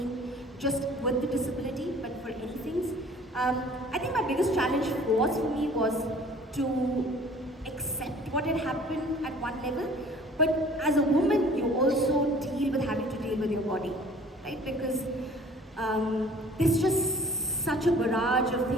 just with the disability, but for anything. I think my biggest challenge for me was to accept what had happened at one level, but as a woman, you also deal with having to deal with your body, right? Because there's just such a barrage of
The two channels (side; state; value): both; normal; correlation 0.50